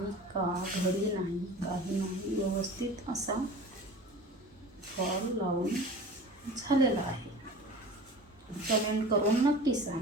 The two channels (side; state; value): both; normal; correlation 0.38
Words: का, घडी नाही, काही नाही, व्यवस्थित असा फॉल लावून झालेला आहे. कमेंट करून नक्की